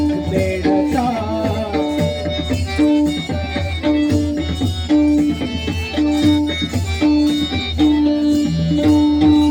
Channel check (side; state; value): both; identical; correlation 1.00